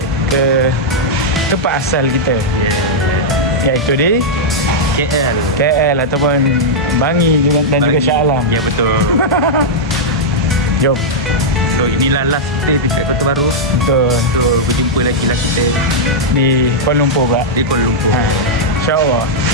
ke tempat asal kita. Iaitu di KL ataupun Bangi dan juga Shah Alam. Ya betul. Jom. So inilah last kita dekat Kota Baru. Betul. So berjumpa lagi lah kita Di Kuala Lumpur pula. di Kuala Lumpur. InsyaAllah.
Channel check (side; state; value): both; normal; correlation -0.06